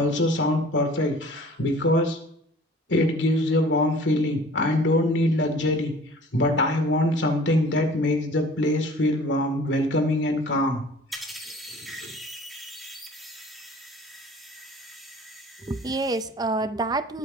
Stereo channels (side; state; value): both; normal; correlation 0.48